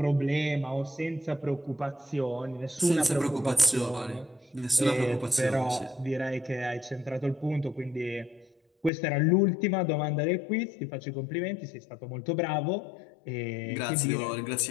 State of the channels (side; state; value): right; drops out; at 8.9 s